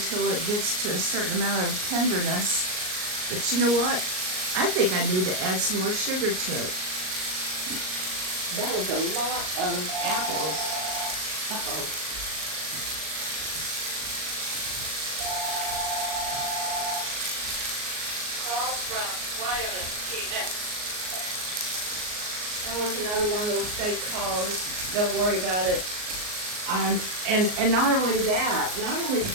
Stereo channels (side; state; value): left; late; 38 ms